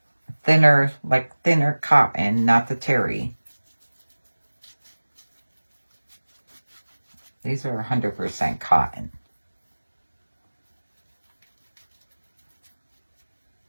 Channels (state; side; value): inverted; both; correlation -1.00